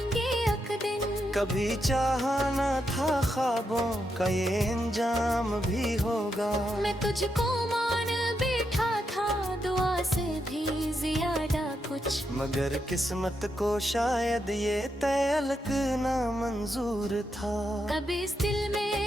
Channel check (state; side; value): normal; both; correlation 0.83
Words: एक दिन, कभी चाहा न था ख्वाबों का ये अंजाम भी होगा। मैं तुझको मान बैठा था दुआ से भी ज्यादा कुछ, मगर किस्मत को शायद ये तलक ना मंजूर था। कभी इस दिल